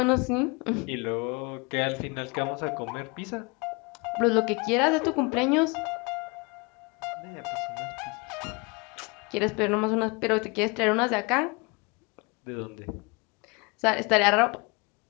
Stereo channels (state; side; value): quieter; right; 29.2 dB